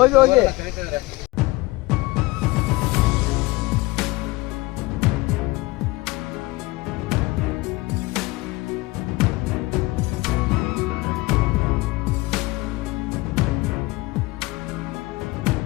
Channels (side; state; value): right; quieter; 21.6 dB